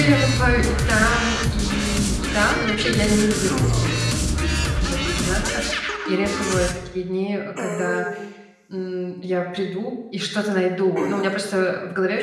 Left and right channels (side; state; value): both; identical; correlation 1.00